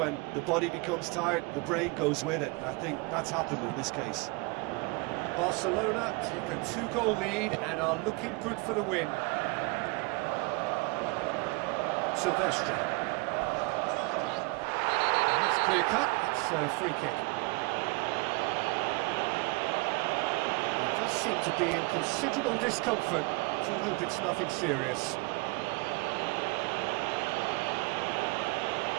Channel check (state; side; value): quieter; left; 26.7 dB